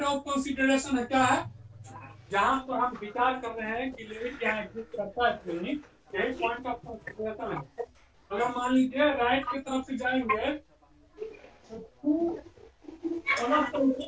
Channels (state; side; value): identical; both; correlation 1.00